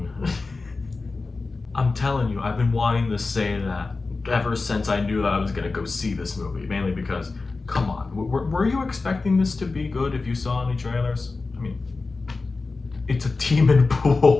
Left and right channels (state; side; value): quieter; right; 3.8 dB